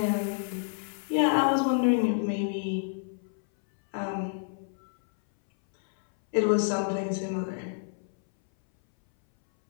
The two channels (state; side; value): silent; right; 59 dB below the other